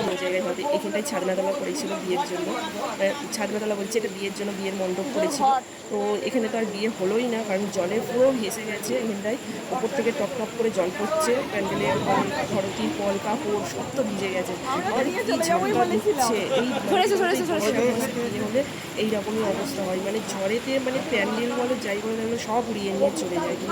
অন্য জায়গায় হবে। এখানটায় ছাদনাতলা করেছিল বিয়ের জন্য, ছাদনাতলা বলছে এটা বিয়ের জন্য, বিয়ের মণ্ডপ করেছিল। তো এখানে তো আর বিয়ে হলোই না, কারণ জলে পুরো ভেসে গেছে। এখানটায় ওপর থেকে টপ টপ করে জল পড়ছে, প্যান্ডেলের ধরো তিরপল কাপড় সব তো ভিজে গেছে, আর কি ঝাপটা দিচ্ছে। এই বিয়ে হলে এইরকমই অবস্থা হয়, মানে ঝড়েতে মানে প্যান্ডেল বলো যাই বলো তাহলে সব উড়িয়ে নিয়ে চলে যায়।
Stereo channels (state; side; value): identical; both; correlation 1.00